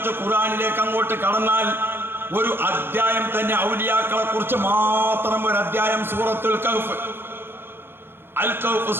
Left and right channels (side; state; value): left; late; 0.11 ms